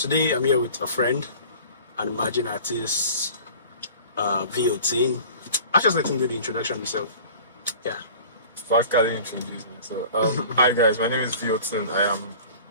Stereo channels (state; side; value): inverted; both; correlation -0.44